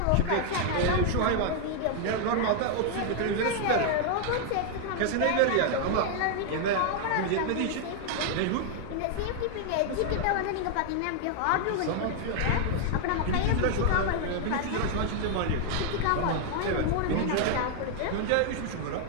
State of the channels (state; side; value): different; both; correlation 0.00